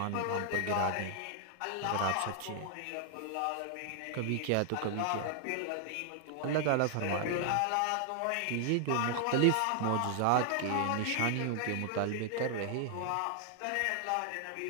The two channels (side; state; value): both; different; correlation 0.00